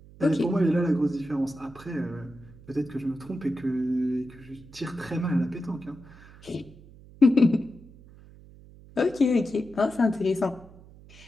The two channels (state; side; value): noise; right; hum, 21 dB below the sound